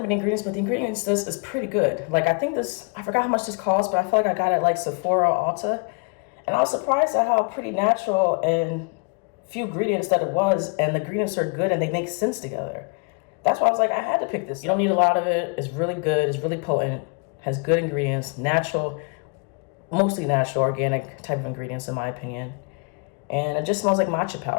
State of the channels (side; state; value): right; quieter; 34.3 dB